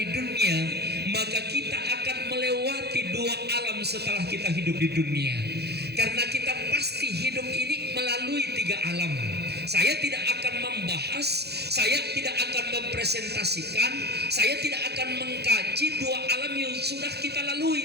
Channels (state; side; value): late; left; 0.48 ms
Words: dunia, maka kita akan melewati dua alam setelah kita hidup di dunia. Karena kita pasti hidup ini melalui tiga alam. Saya tidak akan membahas, saya tidak akan mempresentasikan, saya tidak akan mengkaji dua alam yang sudah kita lalui,